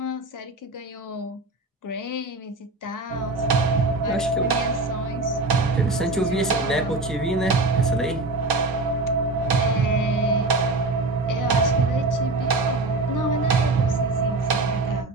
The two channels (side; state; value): left; quieter; 3.1 dB